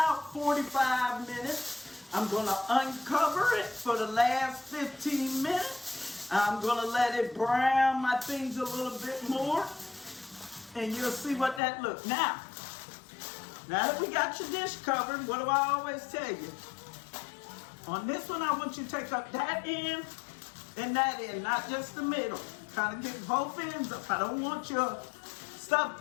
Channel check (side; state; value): right; drops out; at 11.6 s